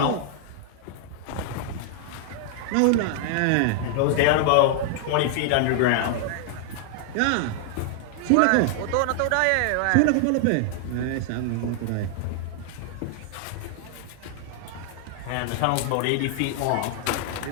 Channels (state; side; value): different; both; correlation 0.00